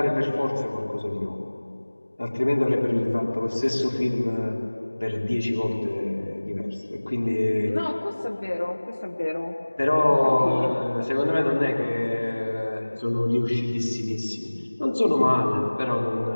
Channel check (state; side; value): inverted; both; correlation -1.00